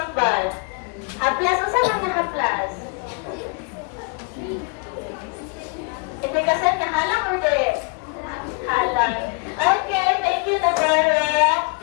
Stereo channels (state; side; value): quieter; right; 32.8 dB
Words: Haplas, unsa na nga haplas? Ipikasan na halang or direct? Halang. Okay, thank you, Navarra.